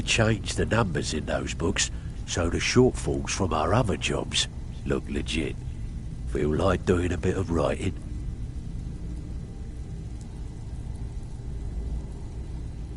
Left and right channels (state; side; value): identical; both; correlation 1.00